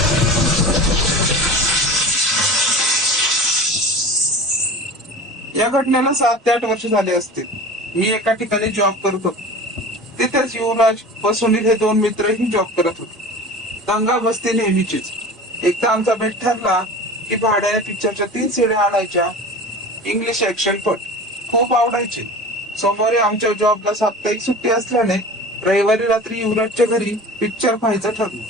या घटनेला 7 ते 8 वर्ष झाले असतील. मी एका ठिकाणी जॉब करत होतो. तिथेच युवराज व सुनील हे 2 मित्रही जॉब करत होते. दंगा बसती नेहमीचीच. एकदा आमचा बेट ठरला की भाड्याने पिक्चरच्या 3 सीड्या आणायच्या. इंग्लिश ऍक्शन पट खूप आवडायचे. सोमवारी आमच्या जॉबला साप्ताहिक सुट्टी असल्याने रविवारी रात्री युवराजच्या घरी पिक्चर पाहायचं ठरलं.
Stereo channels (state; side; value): normal; both; correlation 0.37